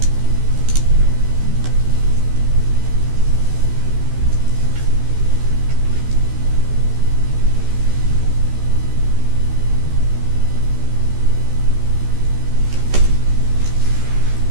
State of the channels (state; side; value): late; left; 13 ms